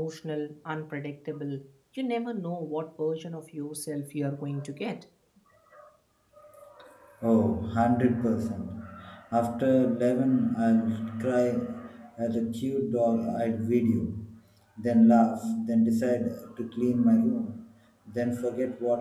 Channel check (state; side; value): identical; both; correlation 1.00